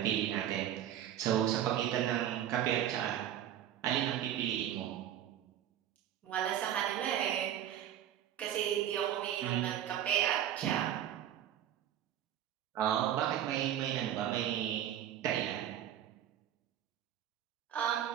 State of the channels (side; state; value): left; quieter; 11.0 dB